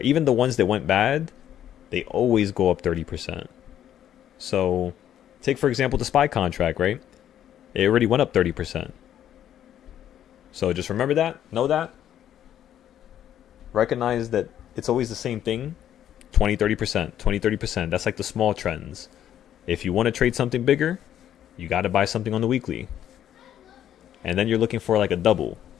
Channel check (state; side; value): quieter; right; 10.7 dB